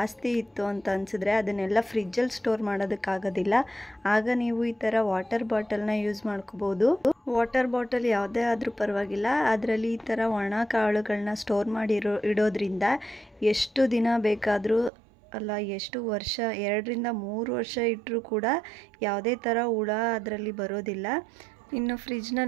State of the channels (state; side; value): drops out; left; at 14.9 s